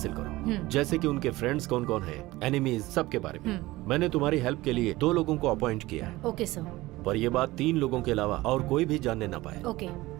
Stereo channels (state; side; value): quieter; left; 18.8 dB